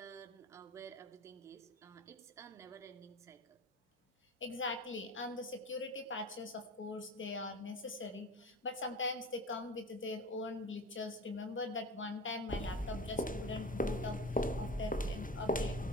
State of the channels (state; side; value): normal; both; correlation 0.34